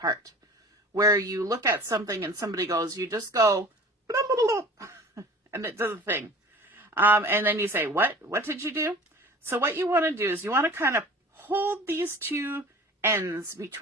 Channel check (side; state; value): both; normal; correlation 0.42